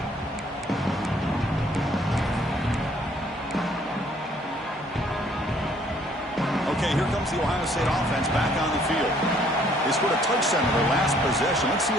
Okay, here comes the Ohio State offense back on the field. They scored a touchdown in their last possession. Let's see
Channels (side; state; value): both; normal; correlation 0.62